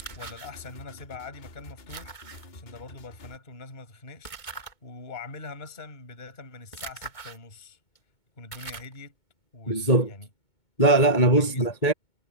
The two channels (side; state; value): right; late; 2.2 ms